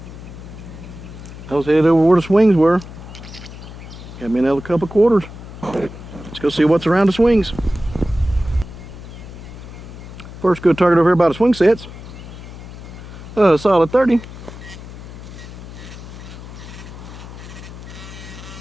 I was headed over where the swings were. Got me another couple quarters. Let's go see what's around the swings. First good target over here by the swing sets. Solid 30.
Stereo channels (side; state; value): left; noise; hum, 14 dB below the sound